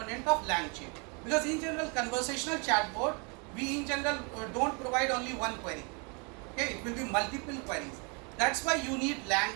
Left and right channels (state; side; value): quieter; left; 33.4 dB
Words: of LangChain. Because in general conversational chatbot, we in general don't provide only one query. Okay, it will be multiple queries. That's why you need